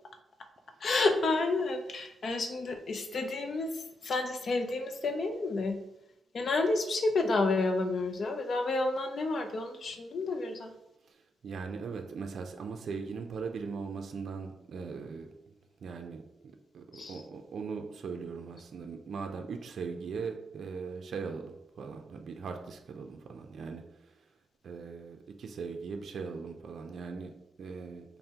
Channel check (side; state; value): both; normal; correlation 0.80